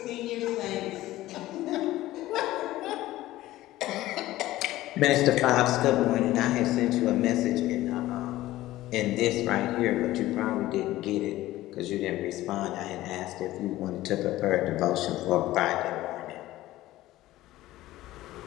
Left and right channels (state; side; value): quieter; right; 16.1 dB